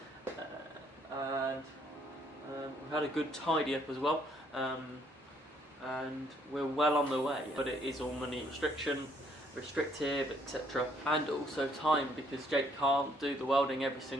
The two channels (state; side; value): normal; both; correlation 0.66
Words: And we've had a good tidy up as well, and we're well on the way, but it is all money restrictive, etc. And also time, because Jake can't do the welding every